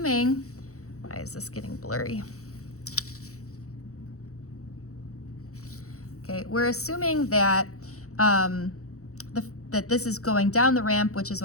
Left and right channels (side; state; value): right; late; 0.65 ms